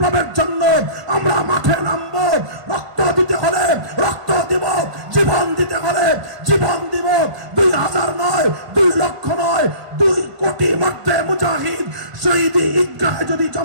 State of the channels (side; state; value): left; late; 1.5 ms